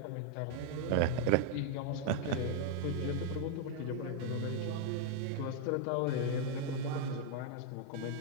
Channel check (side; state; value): both; different; correlation 0.00